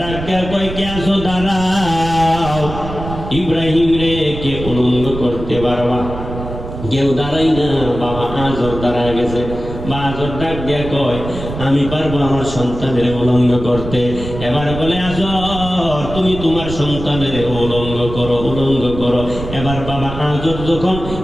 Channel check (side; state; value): right; noise; rumble, 9 dB below the sound